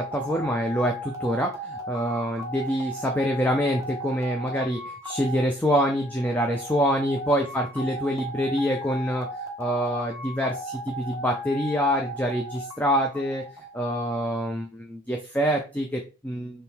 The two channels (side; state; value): both; normal; correlation 0.62